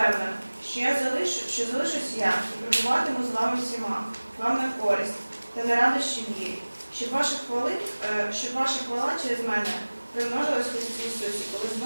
що залишусь я і пробуватиму з вами всіма, вам на користь та на радощі вірі, щоб ваша хвала через мене примножилась в Христі Ісусі, коли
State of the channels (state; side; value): inverted; both; correlation -1.00